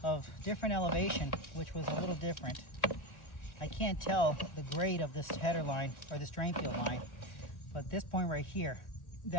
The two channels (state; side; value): late; right; 1.4 ms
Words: of different elevation, which was a little different. I can't tell the grade of this header line or this drain field line, but this point right here,